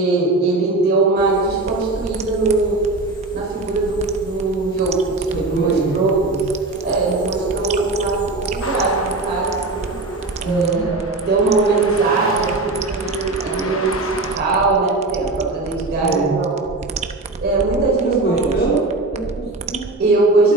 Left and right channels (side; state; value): left; quieter; 3.1 dB